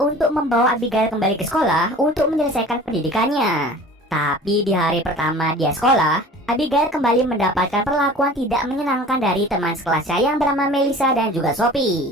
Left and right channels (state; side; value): normal; both; correlation 0.43